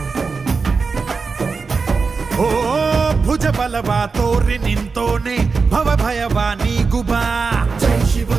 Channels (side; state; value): left; quieter; 4.7 dB